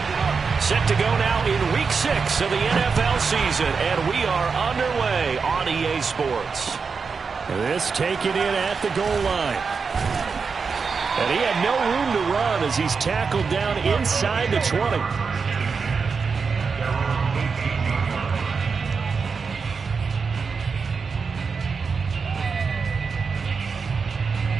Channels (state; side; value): quieter; left; 5.2 dB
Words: Set to go now in Week 6 of the NFL season, and we are underway on EA Sports. This taken in at the goal line. And he had no room to run as he's tackled down inside the 20.